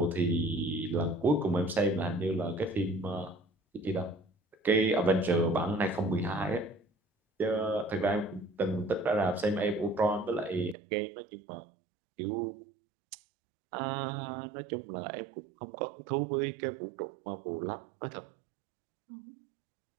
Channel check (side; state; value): left; drops out; at 10.8 s